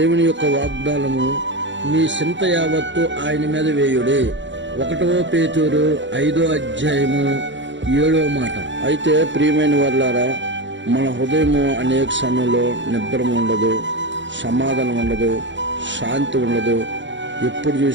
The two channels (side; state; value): left; late; 0.54 ms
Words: యొక్క వాగ్దానము, మీ చింత యావత్తు ఆయన మీద వేయుడి. 1 పేతురు 5:7 మాట. అయితే ప్రియమైన వారులారా, మన హృదయము అనేక సమయంలో నిద్ర ఉండదు, సమాధానం ఉండదు, శాంతి ఉండదు. ఎప్పుడు